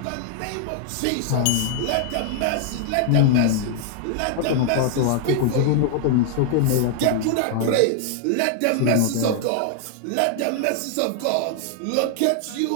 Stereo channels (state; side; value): different; both; correlation 0.00